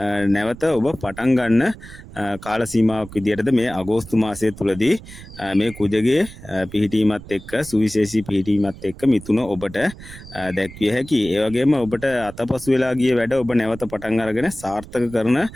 නැවත ඔබ පටන් ගන්න කාල සීමාවක් විදිහටද මේ අගෝස්තු මාසය තුලදී මේ කුජගේ පිහිටීමත් එක්ක, සුවිශේෂී පිහිටීමත් එක්ක මිථුන ඔබට දැක්විය හැකියි. ඒ වගේම ඔබට අතපසු වෙලා ගිය වැඩ ඔබ නැවත පටන් අරගෙන සාර්ථක කරන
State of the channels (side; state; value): right; noise; rumble, 16 dB below the sound